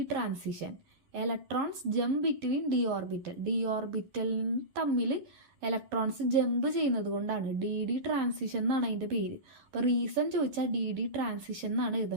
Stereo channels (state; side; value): late; left; 11 ms